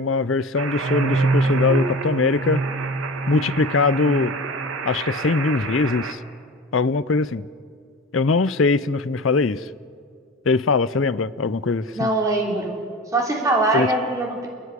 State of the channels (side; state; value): both; normal; correlation 0.32